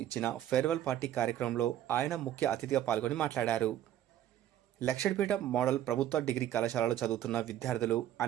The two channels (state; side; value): quieter; left; 11.9 dB